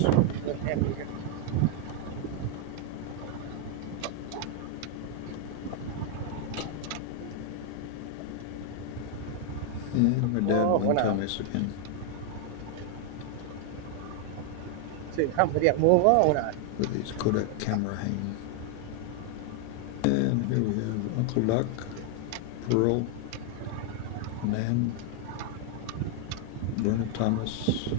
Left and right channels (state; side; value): different; both; correlation 0.00